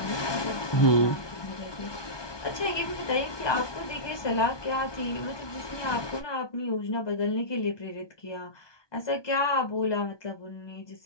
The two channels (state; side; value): late; right; 1.2 ms